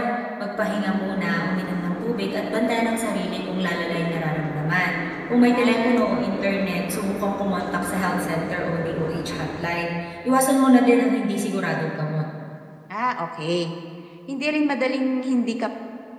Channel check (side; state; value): both; identical; correlation 1.00